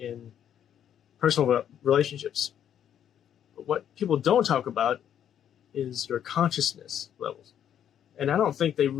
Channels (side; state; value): right; quieter; 9.7 dB